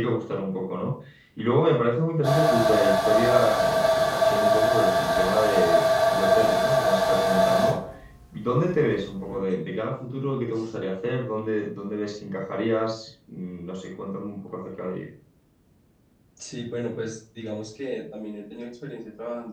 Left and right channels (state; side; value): identical; both; correlation 1.00